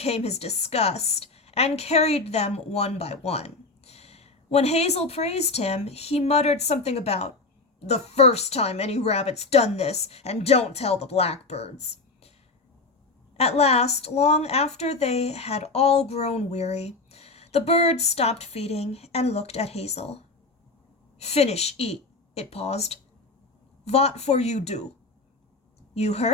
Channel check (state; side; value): quieter; right; 3.5 dB